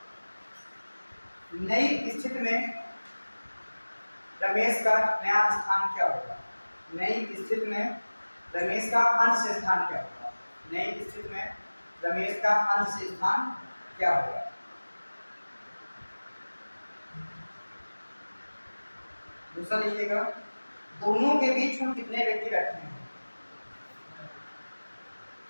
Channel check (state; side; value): inverted; both; correlation -1.00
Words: नई स्थिति में रमेश का नया स्थान क्या होगा? नई स्थिति में रमेश का अंत से स्थान क्या होगा? नई स्थिति में रमेश का अंत से स्थान क्या होगा? दूसरा लिखिएगा, दोनों के बीच कुल कितने व्यक्ति बैठे हैं?